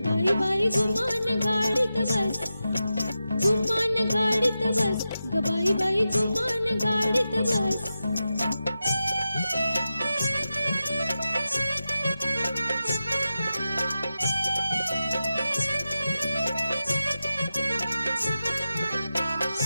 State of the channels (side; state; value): both; inverted; correlation -0.91